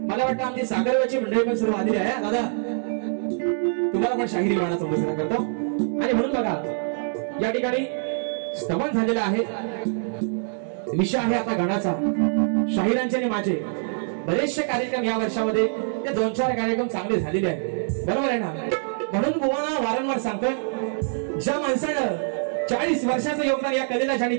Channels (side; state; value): left; silent; digital silence